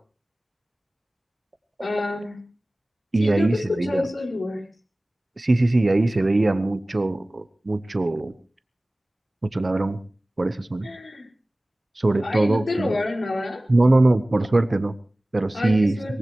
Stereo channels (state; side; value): normal; both; correlation 0.98